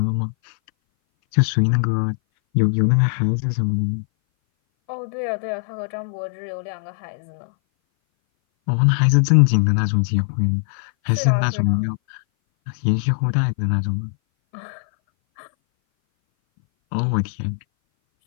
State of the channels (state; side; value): silent; right; 59 dB below the other